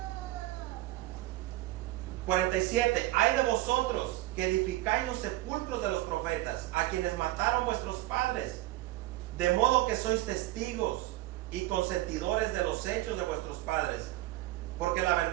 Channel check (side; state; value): left; quieter; 17.3 dB